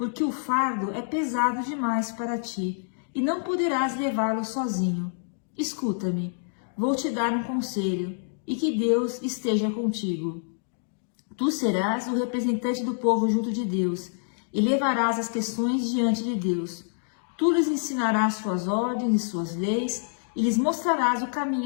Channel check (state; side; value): silent; right; digital silence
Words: o fardo é pesado demais para ti, e não poderás levá-lo sozinho. Escuta-me, vou te dar um conselho, e que Deus esteja contigo. Tu serás o representante do povo junto de Deus, e levarás as questões diante de Deus. Tu lhes ensinarás suas ordens e suas leis, e lhes mostrarás o